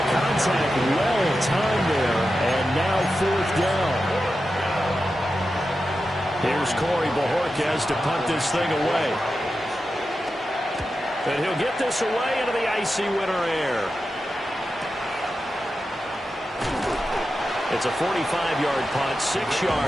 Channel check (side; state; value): both; normal; correlation 0.91